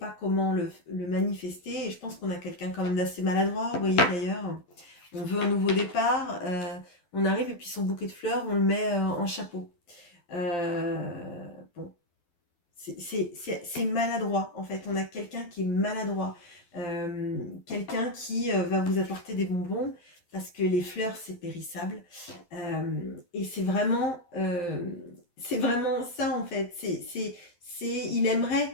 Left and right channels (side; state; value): right; late; 12 ms